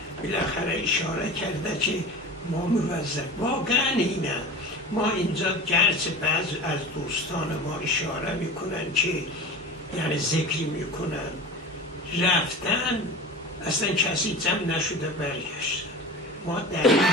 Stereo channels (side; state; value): both; normal; correlation 0.34